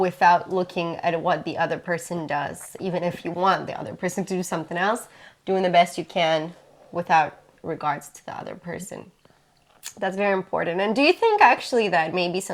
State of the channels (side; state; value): both; identical; correlation 1.00